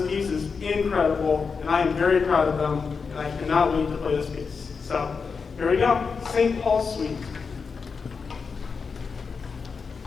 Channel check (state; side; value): quieter; right; 5.3 dB